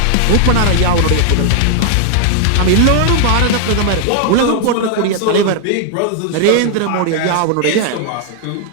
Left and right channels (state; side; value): different; both; correlation 0.00